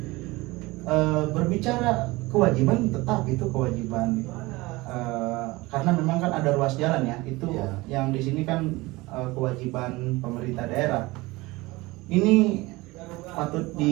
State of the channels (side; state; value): left; quieter; 21.5 dB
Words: Berbicara kewajiban, tetap itu kewajiban, karena memang kan ada ruas jalan ya, itu Iya. yang di sini kan kewajiban pemerintah daerah. Ini patut